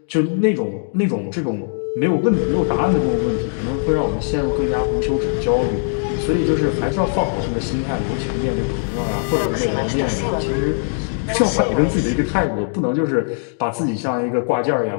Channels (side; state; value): right; silent; digital silence